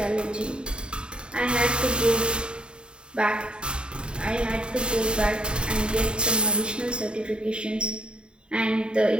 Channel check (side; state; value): left; late; 0.051 ms